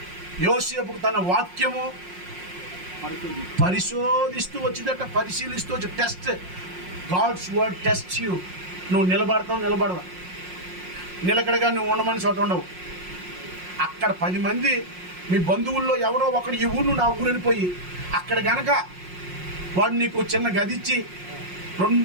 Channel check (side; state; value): left; late; 5.6 ms